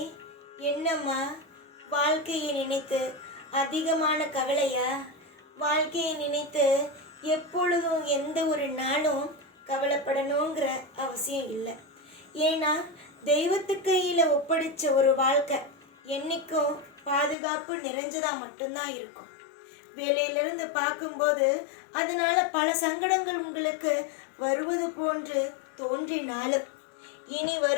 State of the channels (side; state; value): right; drops out; at 17.4 s